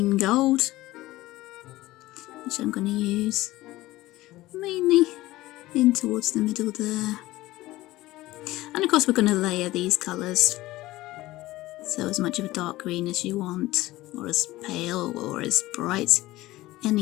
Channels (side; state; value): right; quieter; 17.7 dB